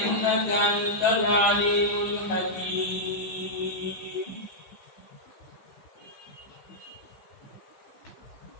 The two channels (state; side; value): late; right; 15 ms